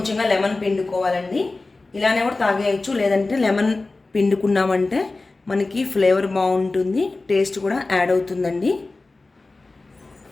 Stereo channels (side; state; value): right; quieter; 3.4 dB